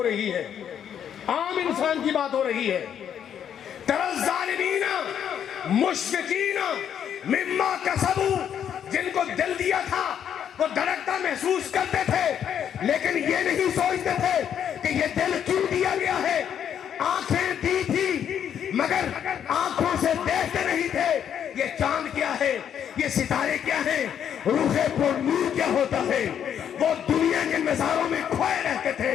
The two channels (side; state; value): right; quieter; 9.0 dB